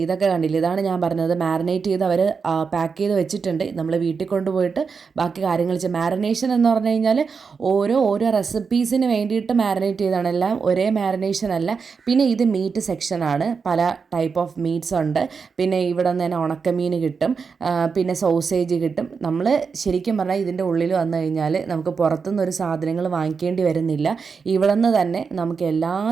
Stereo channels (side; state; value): left; quieter; 5.4 dB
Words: ഇതൊക്കെ കണ്ടില്ല, ഇതാണ് ഞാൻ പറഞ്ഞത്. മാരിനേറ്റ് ചെയ്ത് അവർ പാക്ക് ചെയ്ത് വെച്ചിട്ടുണ്ട്. നമ്മൾ വീട്ടിൽ കൊണ്ടുപോയിട്ട് ബാക്കി കാര്യങ്ങൾ മാരിനേഷൻ എന്ന് പറഞ്ഞു കഴിഞ്ഞാൽ ഓരോ റെസിപ്പീസിന് വേണ്ടിയിട്ട് മാരിനേറ്റ് ചെയ്താണ്. എല്ലാം ഒരേ മാരിനേഷൻ അല്ല. പിന്നെ ഇത് മീറ്റ് സെക്ഷനാണ്. പല ടൈപ്പ് ഓഫ് മീറ്റ്സ് ഉണ്ട്. പിന്നെ ഇവിടെ നിന്ന് തന്നെ ഉണക്കമീൻ കിട്ടും, പിന്നെ സോസേജ് കിട്ടും. നമ്മൾ ശരിക്കും പറഞ്ഞാൽ ഇതിൻ്റെ ഉള്ളിൽ വന്നു കഴിഞ്ഞാൽ നമുക്ക് പുറത്തുനിന്ന് ഒരു സാധനങ്ങൾ വാങ്ങിക്കേണ്ടി വരുന്നില്ല. ഇവിടെ നിന്ന് തന്നെ നമുക്ക് എല്ലാ